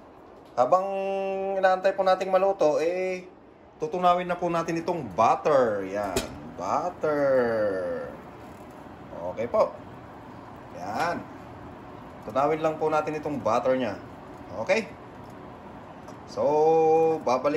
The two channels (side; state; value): both; identical; correlation 1.00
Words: habang inaantay po nating maluto, tutunawin na po natin itong butter. Yan, butter. Okay po. Yan. Tunawin lang po natin itong butter niya. Okay? So,